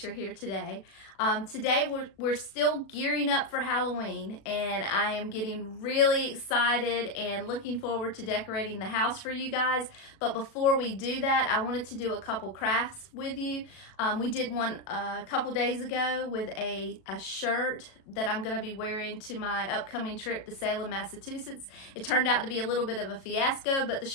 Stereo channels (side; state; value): right; late; 37 ms